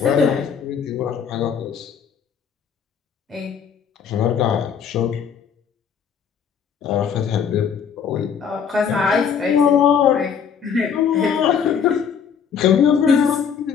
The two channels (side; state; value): right; quieter; 7.2 dB